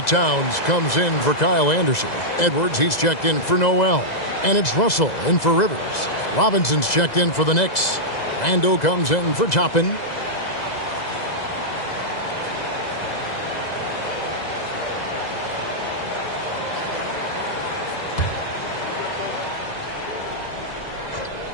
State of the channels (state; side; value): late; right; 2.0 ms